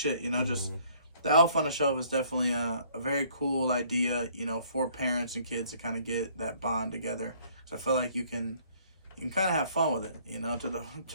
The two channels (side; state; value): both; inverted; correlation -0.61